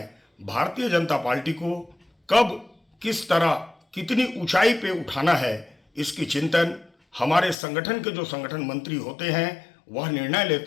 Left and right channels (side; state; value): right; drops out; at 7.6 s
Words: भारतीय जनता पार्टी को कब किस तरह कितनी ऊंचाई पे उठाना है, इसकी चिंतन हमारे संगठन के जो संगठन मंत्री होते हैं वह निर्णय